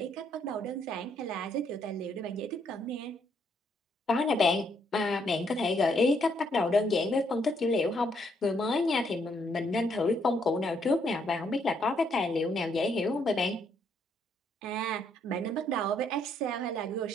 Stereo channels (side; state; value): both; normal; correlation 0.72